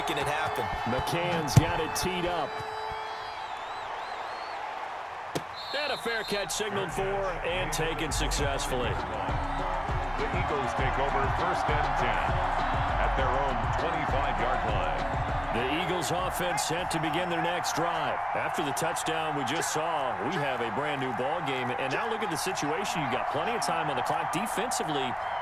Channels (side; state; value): both; identical; correlation 1.00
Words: it happen. McCann's got it teed up. And a fair catch signaled for and taken successfully. The Eagles take over 1st and 10 at their own 25-yard line. The Eagles offense set to begin their next drive. After the touchdown we just saw, we have a brand new ball game. And now look at the situation. You got plenty of time on the clock. Defensively,